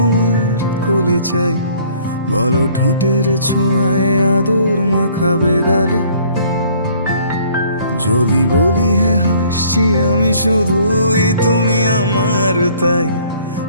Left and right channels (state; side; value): inverted; both; correlation -0.57